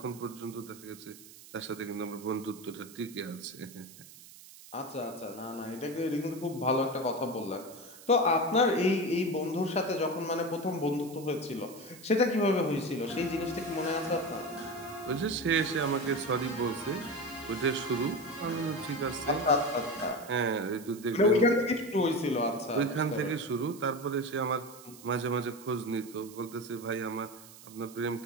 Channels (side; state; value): right; noise; hiss, 19 dB below the sound